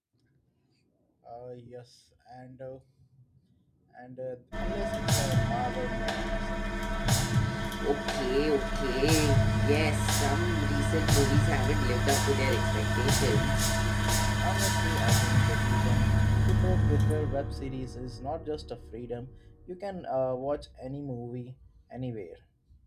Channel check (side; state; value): both; identical; correlation 1.00